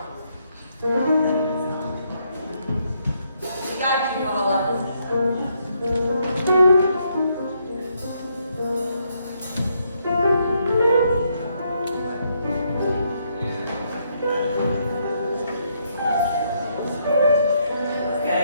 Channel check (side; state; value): both; inverted; correlation -0.75